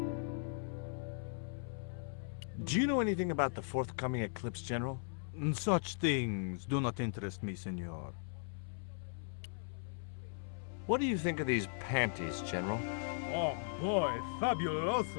Do you know anything about the forthcoming eclipse, General? Such things do not interest me, senor. What do you think of these panties, General? Oh boy,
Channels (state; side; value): silent; right; 52 dB below the other